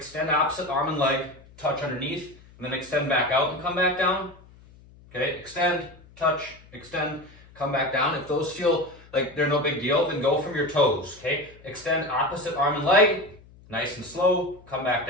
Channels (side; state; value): left; noise; hum, 24 dB below the sound